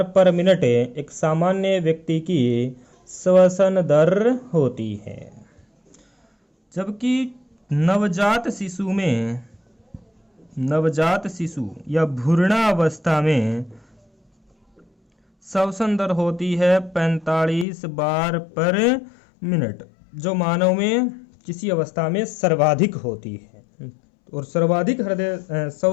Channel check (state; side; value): drops out; right; at 17.7 s